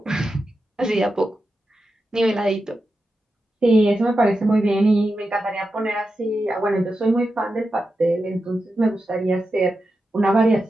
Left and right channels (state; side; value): normal; both; correlation 0.90